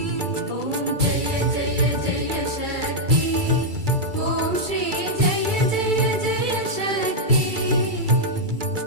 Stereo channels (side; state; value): left; late; 2.3 ms